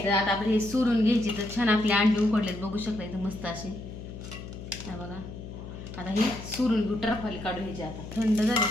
आता आपले हे सोडून घ्यायची तर छान आपले अंडे उकडलेत, बघू शकता इथं मस्त असे. हा बघा, आता हे सोडून घेऊ, टरफाली काढून घ्यायचे. आता थंड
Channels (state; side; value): noise; left; hum, 11 dB below the sound